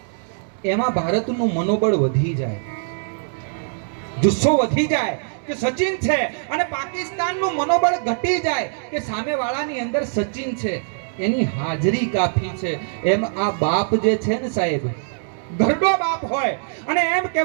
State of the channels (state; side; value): silent; left; digital silence